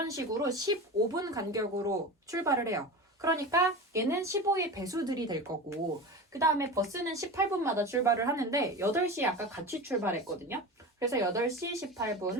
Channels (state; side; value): normal; both; correlation 0.29